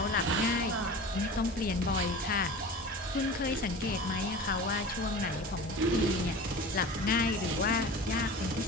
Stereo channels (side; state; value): both; normal; correlation 0.36